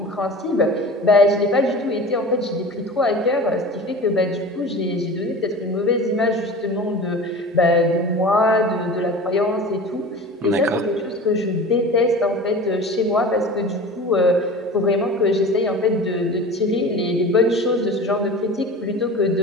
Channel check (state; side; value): normal; both; correlation 0.36